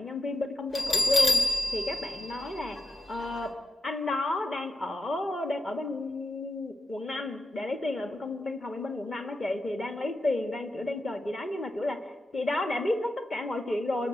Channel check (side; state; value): both; normal; correlation 0.89